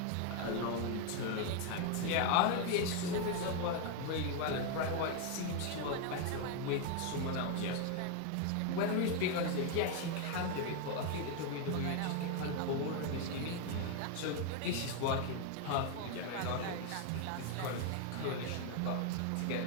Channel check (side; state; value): both; different; correlation 0.01